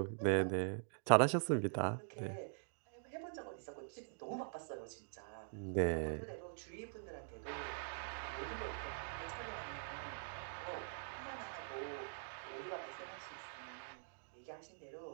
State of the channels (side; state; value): left; silent; digital silence